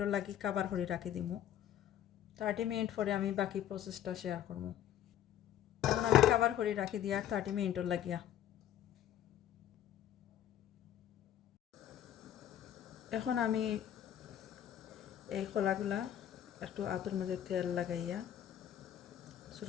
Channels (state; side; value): quieter; right; 11.0 dB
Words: লাগি কাবার করে রাখি দিব। 30 মিনিট পরে আমি বাকি প্রসেসটা শেয়ার করব। এখন আমি কাবার করে রাখি দিয়া 30 মিনিটর লাগিয়া। এখন আমি এই কলাগুলা একটু আতর মধ্যে তেল লাগাইয়া